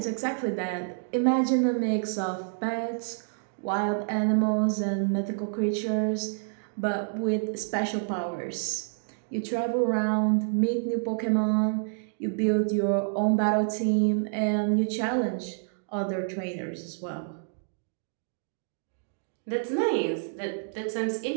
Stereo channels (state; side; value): silent; left; digital silence